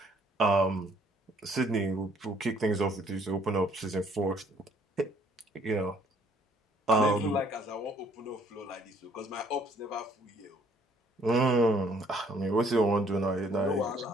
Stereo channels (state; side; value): normal; both; correlation 0.63